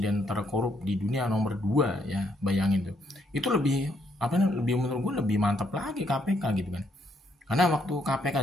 terkorup di dunia nomor 2 ya, bayangin tuh. Itu lebih menurut gue lebih mantap lagi KPK gitu kan. Karena waktu KPK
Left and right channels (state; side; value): normal; both; correlation 0.73